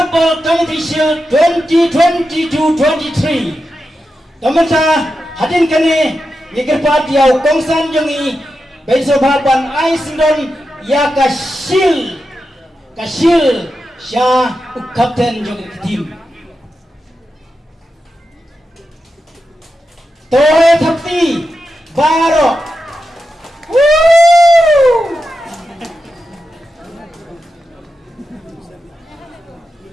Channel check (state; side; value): normal; both; correlation 0.89